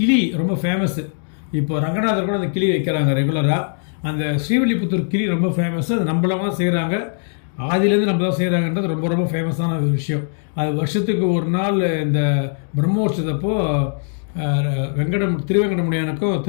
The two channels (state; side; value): silent; right; 66 dB below the other